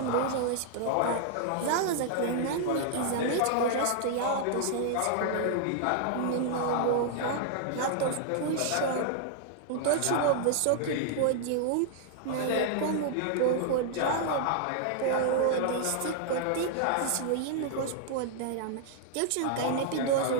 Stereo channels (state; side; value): different; both; correlation -0.01